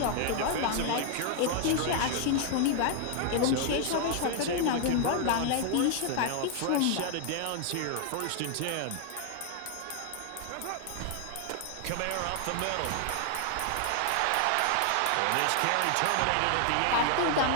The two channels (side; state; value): both; different; correlation 0.00